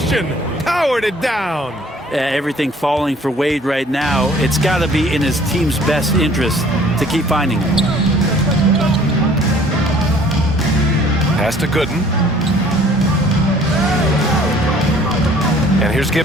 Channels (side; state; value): both; normal; correlation 0.55